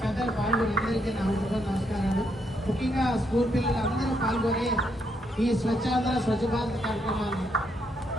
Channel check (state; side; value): normal; both; correlation 0.76